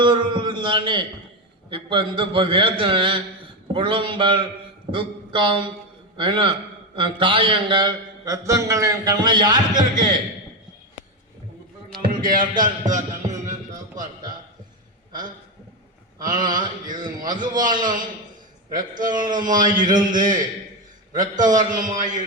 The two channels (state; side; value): normal; both; correlation 0.12